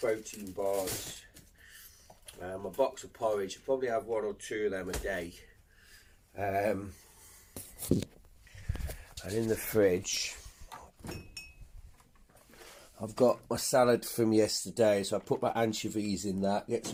bars, a box of porridge. I probably have 1 or 2 of them a day. And in the fridge I've got my salad from yesterday, so I put my anchovies in that, get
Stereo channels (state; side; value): identical; both; correlation 1.00